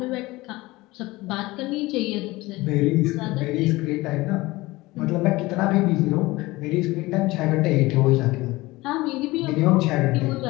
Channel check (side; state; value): right; quieter; 20.4 dB